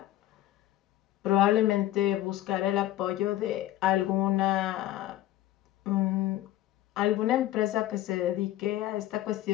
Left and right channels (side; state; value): right; quieter; 14.4 dB